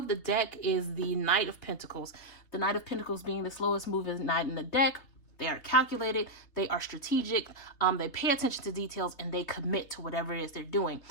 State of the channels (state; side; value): late; right; 3.2 ms